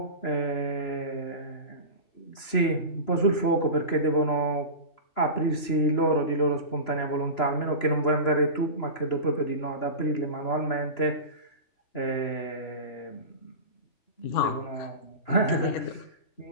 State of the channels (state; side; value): late; right; 3.0 ms